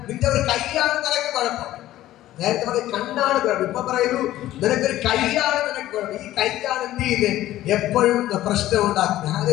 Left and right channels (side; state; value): right; quieter; 14.4 dB